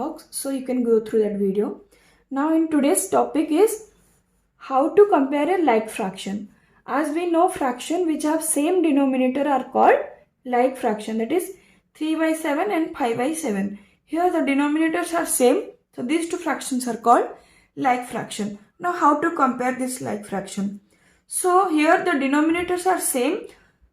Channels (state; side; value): identical; both; correlation 1.00